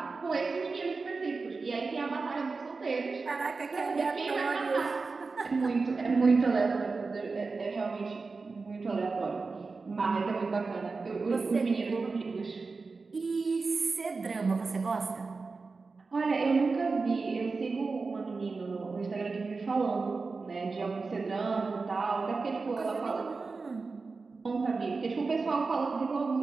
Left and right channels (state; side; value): quieter; left; 4.2 dB